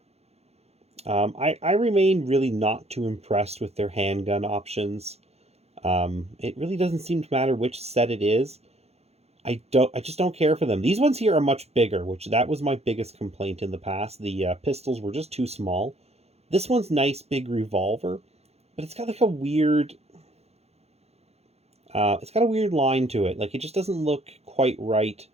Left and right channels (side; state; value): left; late; 0.30 ms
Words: I remain really not too impressed with their handgun options. It really doesn't seem to matter which set it is. I just don't care for them. These ones here are much bigger, which that was my biggest complaint in the past. The pistols were just too small. This one's nice, big revolver, but it's got like a weird... it's got a weird line to it. Like, it just doesn't look quite right.